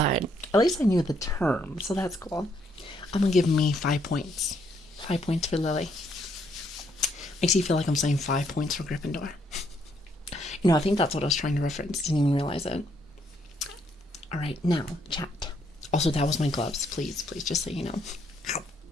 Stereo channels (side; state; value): both; normal; correlation 0.72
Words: at least I knew the term, so that's cool. I'm gonna give me 5 points. 5 points for Lili. Makes you feel like I'm saying 5 points for Gryffindor. You know, I think that's what I was trying to reference. Didn't even realize it. Alright, now, chat. Also, that was my gloves. Please, just so you know.